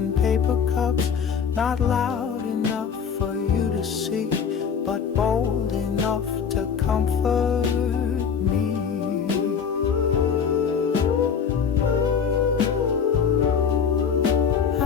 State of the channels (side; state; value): right; quieter; 6.8 dB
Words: paper cups. Not loud enough for you to see, but bold enough to comfort me.